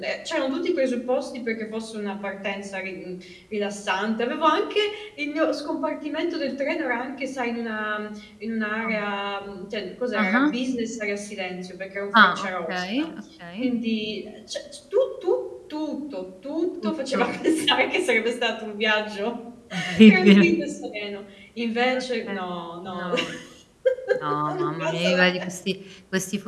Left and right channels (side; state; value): both; identical; correlation 1.00